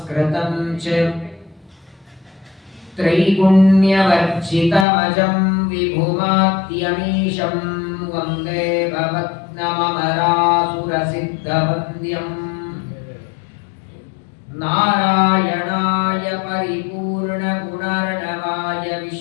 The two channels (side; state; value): right; drops out; at 4.9 s